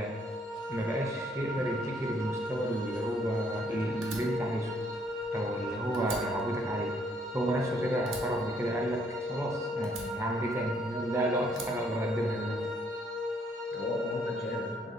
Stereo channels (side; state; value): both; normal; correlation 0.68